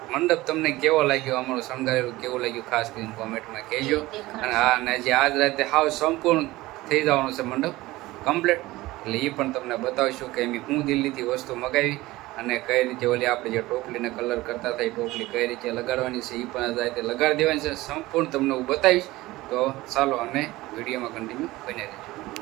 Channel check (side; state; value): left; quieter; 18.7 dB